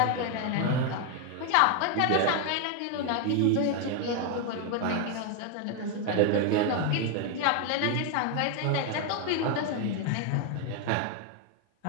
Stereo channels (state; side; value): different; both; correlation 0.01